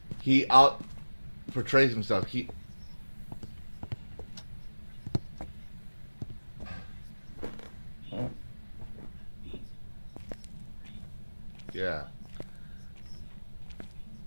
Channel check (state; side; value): inverted; both; correlation -1.00